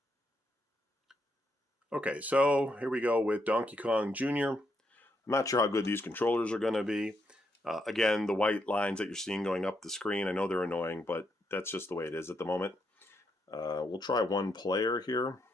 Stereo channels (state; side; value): normal; both; correlation 0.79